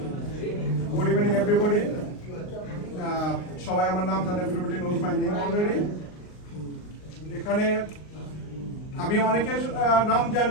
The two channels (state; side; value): late; right; 38 ms